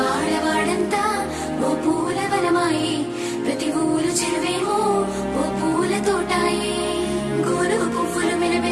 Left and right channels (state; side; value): identical; both; correlation 1.00